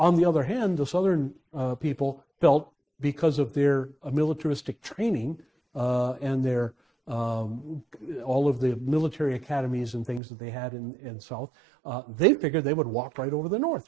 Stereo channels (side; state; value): left; drops out; at 10.2 s